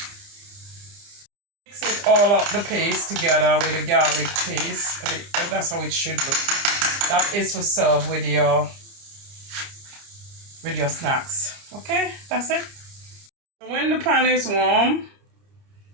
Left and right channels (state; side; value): late; left; 30 ms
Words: Mix it all up, the paste together with the garlic paste. That's how it should look. That is for serve with your snacks. Okay, that's it. When the pan is warm,